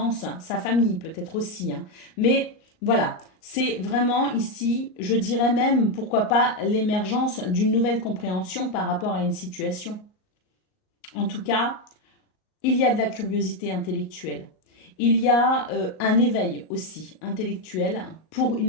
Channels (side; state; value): right; late; 38 ms